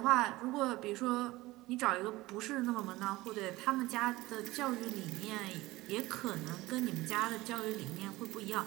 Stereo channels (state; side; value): quieter; left; 19.2 dB